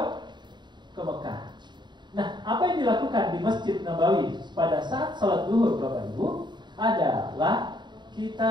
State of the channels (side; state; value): left; late; 0.22 ms